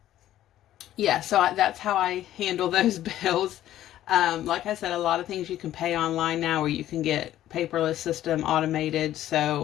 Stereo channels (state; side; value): quieter; right; 13.0 dB